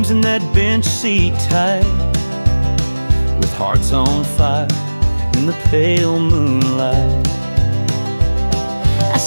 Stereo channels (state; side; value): inverted; both; correlation -1.00